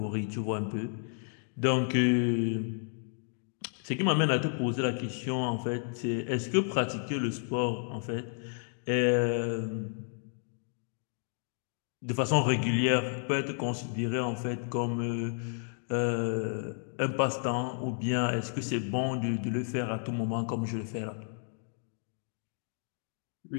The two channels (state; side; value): silent; right; 56 dB below the other